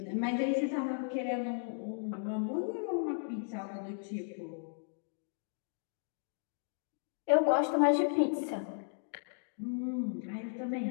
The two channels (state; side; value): silent; right; digital silence